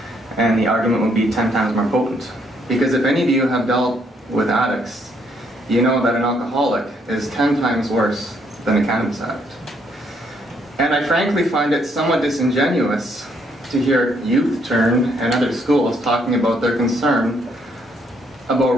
and the argument would be 10 times more potent. Because if any of you have dealt with addicts, you know that an alcoholic is 10 times worse than a cannabis addict. And I frankly find it somewhat disingenuous to hear Youth Turn and other schools talking about their concern about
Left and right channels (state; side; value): normal; both; correlation 0.70